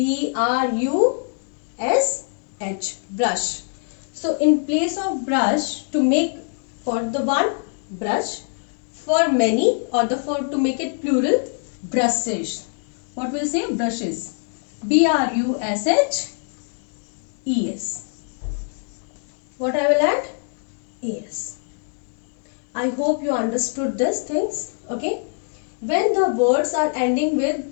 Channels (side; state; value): right; silent; 60 dB below the other